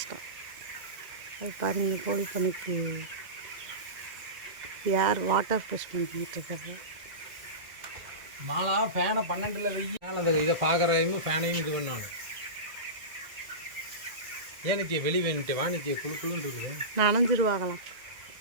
அது பாருங்கள், கோழி பண்ணைக்கு யார் வாட்டர் ப்ரெஷ் பண்ணிக்கிட்டு இருக்காரு. மாலா ஃபேனை 12ல் வெயில் அந்த இதை பார்க்குறையும் ஃபேனையும் இது பண்ணணும். ஏனுக்கு வெளி வேணுட்டு வாணிக்கு குழு குழுன்னு இருக்குது, நனைஞ்சிருவாங்களாம்.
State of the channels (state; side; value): late; left; 2.0 ms